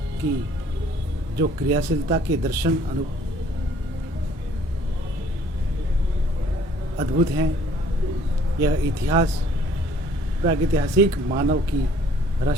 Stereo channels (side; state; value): both; normal; correlation 0.58